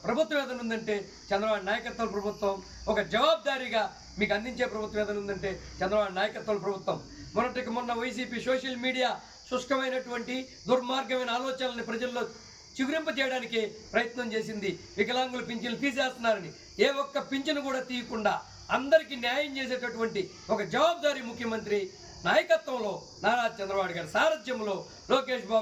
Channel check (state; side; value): identical; both; correlation 1.00